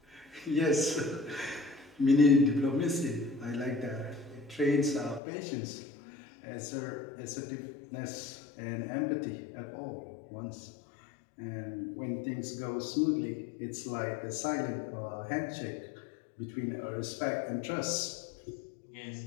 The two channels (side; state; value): right; drops out; at 5.2 s